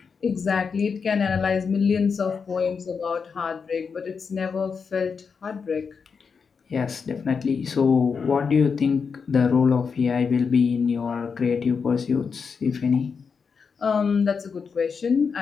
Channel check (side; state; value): right; quieter; 5.7 dB